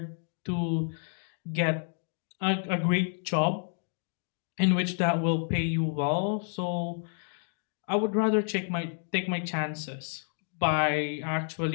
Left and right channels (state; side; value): silent; right; 58 dB below the other